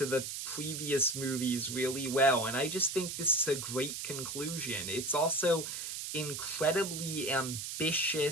the previous movies really well. And I just think this is a great conclusion. It's also incredibly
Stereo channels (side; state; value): right; noise; hiss, 5 dB below the sound